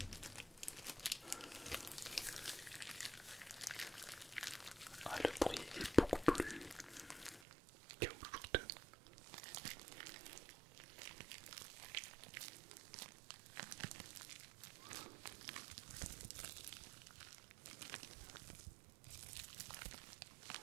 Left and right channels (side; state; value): left; drops out; at 7.4 s